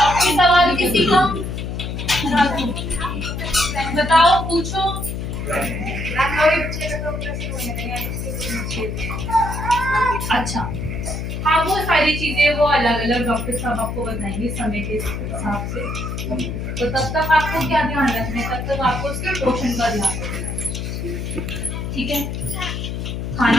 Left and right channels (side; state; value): left; noise; hum, 4 dB below the sound